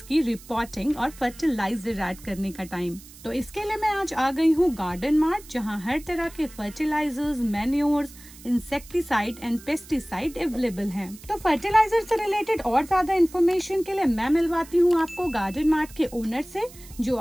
की रिपोर्टिंग और फर्टिलाइजर ऐड करने का टाइम। तो इसके लिए मैं आज आ गई हूँ गार्डन मार्ट, जहाँ हर तरह के fertilizers, manures, insecticide and pesticide available हैं। तो फर्टिलाइजर से रिलेटेड और ज्यादा इन्फॉर्मेशन के लिए मैं मिलवाती हूँ आपको गार्डन मार्ट के ओनर से, जो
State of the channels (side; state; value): right; noise; hiss, 20 dB below the sound